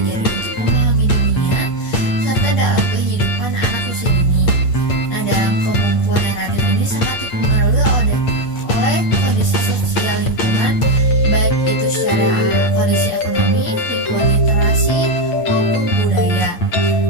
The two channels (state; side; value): late; right; 8.6 ms